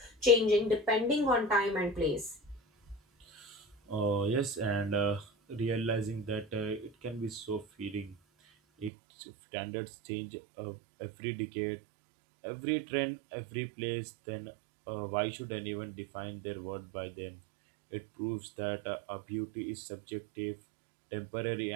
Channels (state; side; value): drops out; left; at 8.9 s